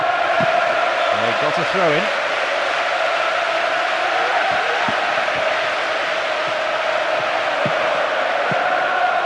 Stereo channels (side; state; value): both; identical; correlation 1.00